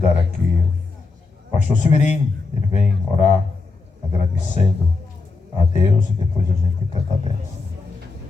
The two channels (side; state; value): right; quieter; 4.0 dB